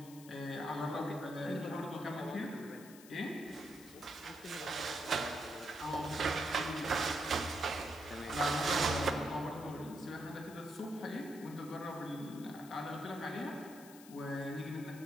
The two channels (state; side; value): noise; left; hiss, 18 dB below the sound